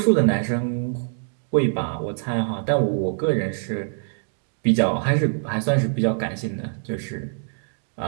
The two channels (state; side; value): silent; left; digital silence